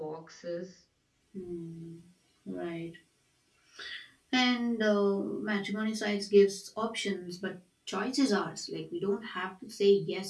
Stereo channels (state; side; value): identical; both; correlation 1.00